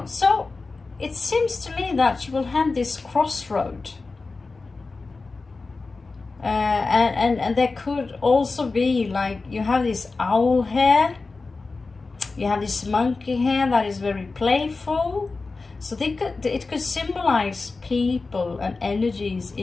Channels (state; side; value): quieter; right; 3.9 dB